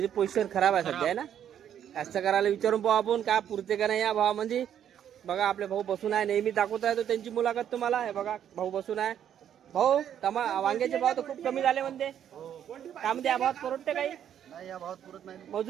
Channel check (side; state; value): left; quieter; 9.7 dB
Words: पोझिशन खराब आहे सध्या आहे ना. कास्तकाराला विचारून पाहू आपण काय पुरते का नाही या भावामध्ये. बघा आपले भाऊ बसून आहे. नेहमी दाखवत आहे तो त्यांची मुलाखत तुम्हाला. हे बघा भाऊ बसून आहे. भाऊ वांग्याचे भाव तर खूप कमी झाले म्हणते. काय म्हणते या भावात परवडते काही? नाही या भावात पुरत नाही.